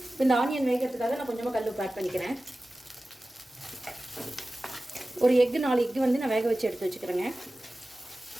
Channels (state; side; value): normal; both; correlation 0.96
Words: இப்போ இந்த ஆனியன் வேகிறதுக்காக நான் கொஞ்சமாக கல் உப்பு ஆட் பண்ணிக்கிறேன். ஒரு 4 எக்கு வந்து நான் வேக வச்சு எடுத்து வச்சுக்கிறேங்க.